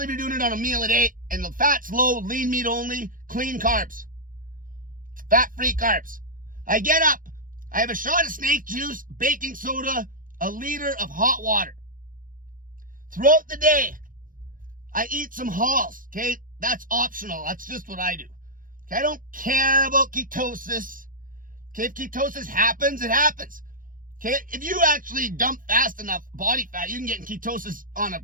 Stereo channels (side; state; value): left; late; 0.40 ms